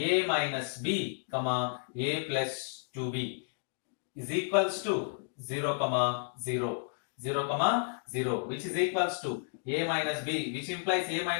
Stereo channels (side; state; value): right; silent; digital silence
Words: minus b comma a plus 2b is equals to 0 comma 0, which is equals to a minus b, which implies a